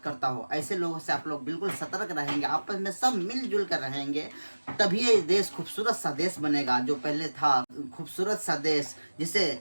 करता हो। ऐसे लोगों से आप लोग बिल्कुल सतर्क रहेंगे, आपस में सब मिलजुल कर रहेंगे, तभी ये देश खूबसूरत सा देश बनेगा जो पहले था, खूबसूरत सा देश जिसे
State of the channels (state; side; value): inverted; both; correlation -1.00